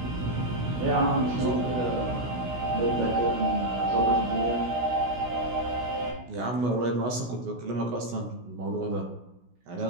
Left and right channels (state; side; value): late; left; 16 ms